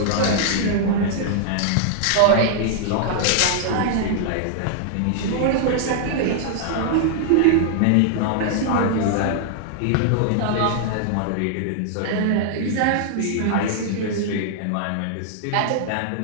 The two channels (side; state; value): both; different; correlation -0.01